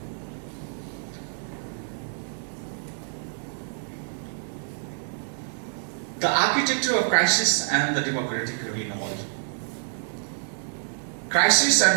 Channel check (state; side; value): silent; left; digital silence